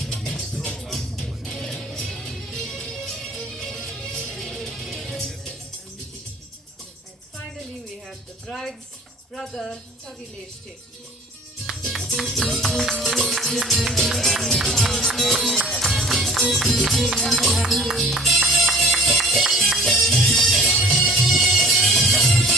Finally, we have the bride's brother, Tavilesh Chetty.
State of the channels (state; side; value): normal; both; correlation 0.49